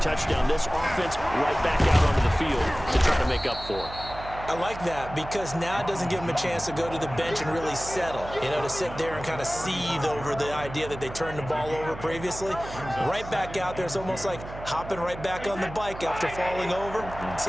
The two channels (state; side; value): noise; right; hum, 12 dB below the sound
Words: touchdown. This offense right back out onto the field to try to make up for it. I like that because now it doesn't give them a chance to go to the bench and really settle, to sit there and kind of seethe over the idea that they turned the ball over previously. Right back out there, it's almost like hopping right back on the bike after falling over.